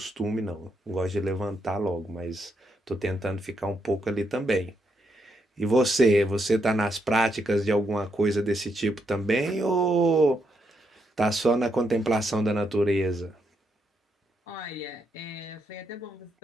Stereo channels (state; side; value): normal; both; correlation 0.79